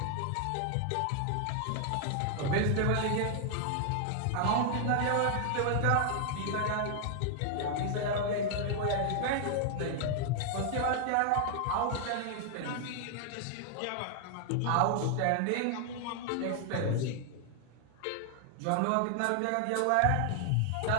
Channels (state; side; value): different; both; correlation 0.00